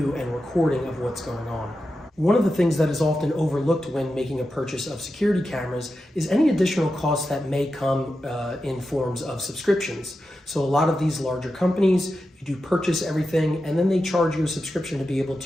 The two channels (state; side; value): normal; both; correlation 0.90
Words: and recording of what's going on. One of the things that is often overlooked when making a purchase of security cameras is any additional costs that may come in forms of subscriptions. So a lot of these larger companies, you do purchase everything and then they charge you a subscription to be able